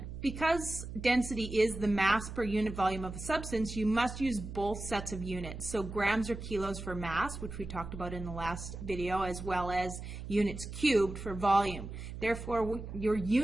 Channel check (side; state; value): right; noise; hum, 9 dB below the sound